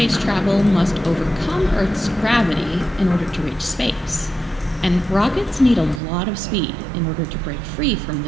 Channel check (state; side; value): drops out; left; at 6.0 s